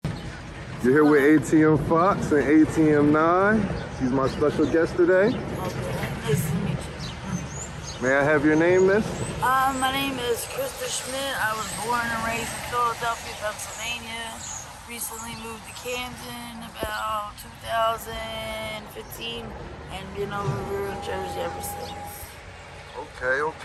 You're here with ATM Fox and ATM 9. She's my special guest today. Okay, nice to meet you. May I have your name, miss? My name is Krista Schmidt. I was born and raised in Philadelphia, Pennsylvania. Recently moved to Camden about 2015 and been over here in Jersey ever since.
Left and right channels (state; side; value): identical; both; correlation 1.00